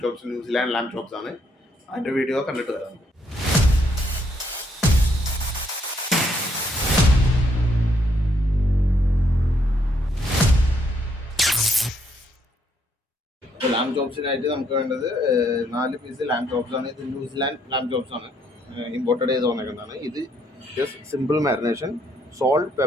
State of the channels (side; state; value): both; normal; correlation 0.71